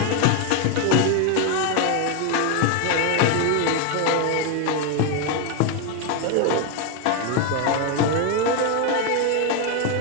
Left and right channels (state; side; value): different; both; correlation 0.01